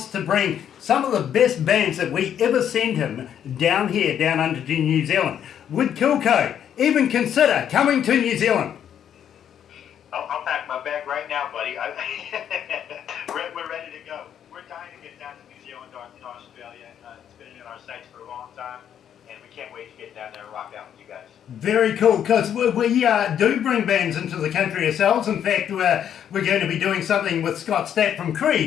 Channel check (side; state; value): right; quieter; 9.3 dB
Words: to bring some of the best bands that we ever send him down here, down under to New Zealand. Would KILLCODE even consider coming to New Zealand? I'll pack my bag right now, buddy. We're ready to go. We're dying to get down to New Zealand or in Australia. It's been in our sights for a long time, and we can't wait to get down there and rock out with you guys. Very cool, because we do bring bands into the country ourselves. In fact, we're going to be doing something with Scott Stapp from